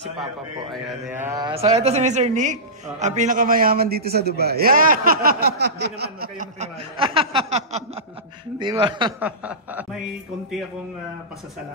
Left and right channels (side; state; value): both; normal; correlation -0.19